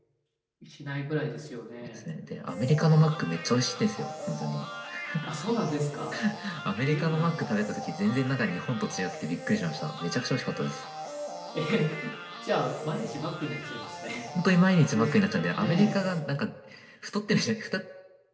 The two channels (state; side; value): identical; both; correlation 1.00